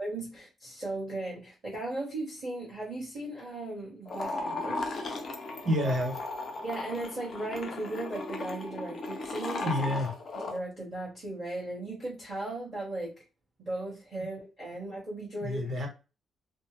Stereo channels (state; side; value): normal; both; correlation 0.71